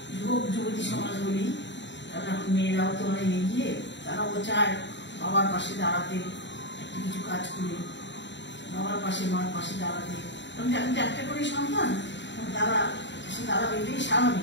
যুবতী সমাজ বলি। কারণ এখন মেয়েরাও তো অনেক এগিয়ে, তারাও চায় বাবার পাশে দাঁড়াতে, একটা কিছু কাজ করে বাবার পাশে মার পাশে দাঁড়াতে। কারণ এখন তো একটা করে সন্তান, তারা দাঁড়াবে, এটাই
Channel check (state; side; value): late; right; 0.52 ms